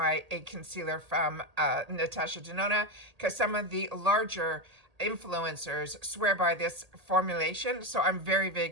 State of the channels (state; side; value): late; left; 1.8 ms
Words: a concealer from Natasha Denona, because some of the larger influencers swear by this formulation. So I'm very, very